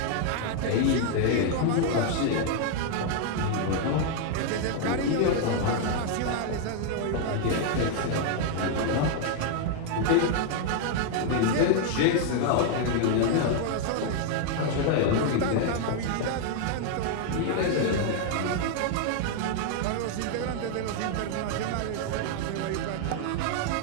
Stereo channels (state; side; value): different; both; correlation 0.00